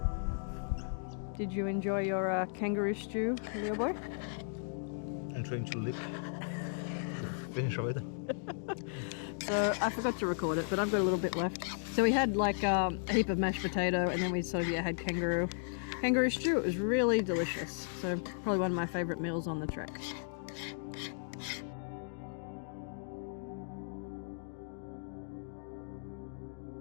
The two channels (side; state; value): right; silent; digital silence